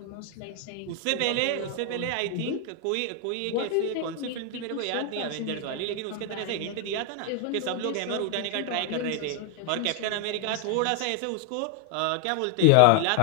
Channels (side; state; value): both; different; correlation 0.01